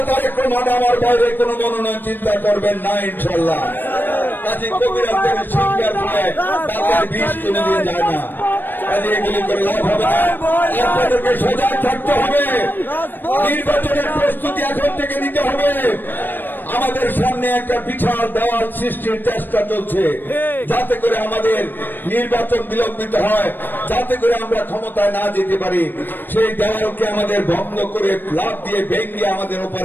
তারেক রহমান আমার বাইরে কোনো মনোনয়ন চিন্তা করবেন না ইনশাল্লাহ। কাজী কবিরাজ থেকে শিক্ষার ফলে তাদের বিষ কোনদিন যায় না। কাজে এগুলি করে লাভ হবে না। আপনাদেরকে সজাগ থাকতে হবে। নির্বাচনের প্রস্তুতি এখন থেকে নিতে হবে। আমাদের সামনে একটা বিশাল দেওয়াল সৃষ্টির চেষ্টা চলছে, যাতে করে আমাদের নির্বাচন বিলম্বিত হয়, যাতে করে আমরা ক্ষমতায় না যেতে পারি। সেই দেওয়ালকে আমাদের ভঙ্গ করে লাভ দিয়ে ভেঙে আমাদের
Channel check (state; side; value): late; right; 0.093 ms